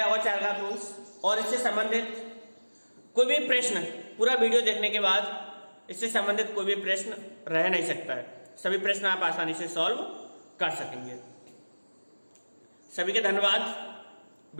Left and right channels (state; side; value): inverted; both; correlation -1.00